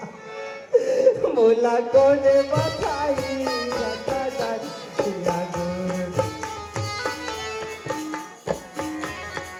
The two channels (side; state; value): both; identical; correlation 1.00